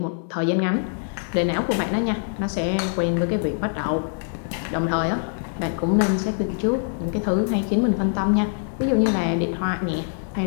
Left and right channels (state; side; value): silent; right; 63 dB below the other